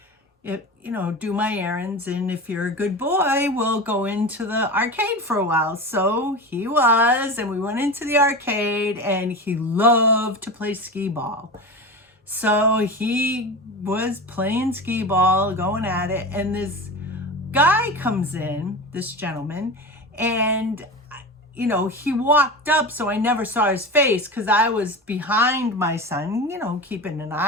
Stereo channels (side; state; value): both; normal; correlation 0.27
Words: do my errands, and if you're a good boy, we'll go into the arcade for a while. So he was, and we went into the arcade, and he loved to play skee ball. So he was playing skee ball, going at it, and this guy comes in, this gentleman, and he walked up, so I never saw his face because I was behind my son, keeping an